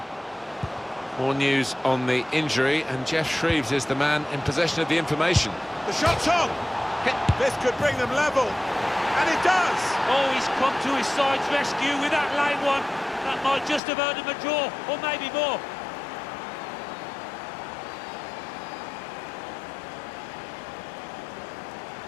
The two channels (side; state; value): right; drops out; at 13.8 s